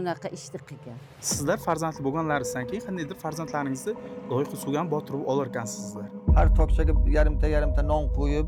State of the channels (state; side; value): identical; both; correlation 1.00